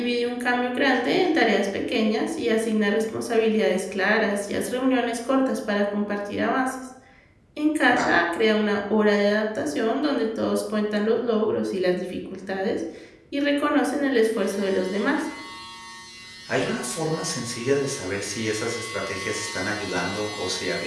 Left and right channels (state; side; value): identical; both; correlation 1.00